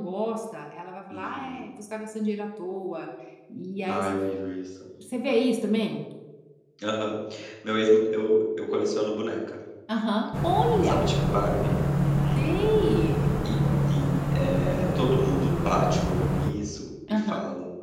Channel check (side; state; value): both; identical; correlation 1.00